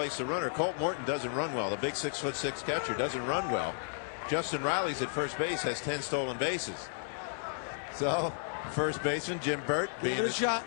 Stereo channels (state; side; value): silent; right; digital silence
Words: the runner. Colt Morton doesn't run well. The big 6'6" catcher doesn't run well. Justin Riley's at first base, has 10 stolen bases. So, first baseman Jim Burt, being